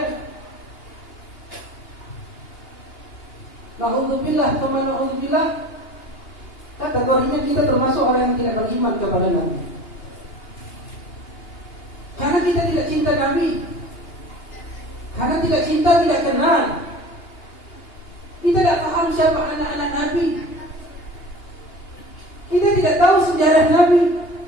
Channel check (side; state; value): right; late; 2.8 ms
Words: Na'udzubillah, kama na'udzubillah, kategorinya kita termasuk orang yang tidak beriman kepada Nabi. Karena kita tidak cinta Nabi, karena tidak cinta, tidak kenal. Kita tidak paham siapa anak-anak Nabi. Kita tidak tahu sejarah Nabi.